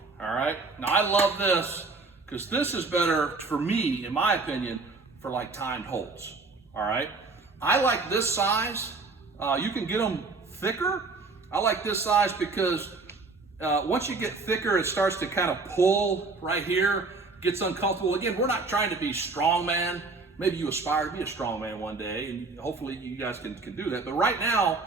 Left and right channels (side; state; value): left; quieter; 3.8 dB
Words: all right? Now, I love this because this is better for me, in my opinion, for like timed holds, all right? I like this size. You can get them thicker. I like this size because once you get thicker, it starts to kind of pull right here, gets uncomfortable. Again, we're not trying to be strongman. Maybe you aspire to be a strongman one day, and hopefully you guys can do that. But right now,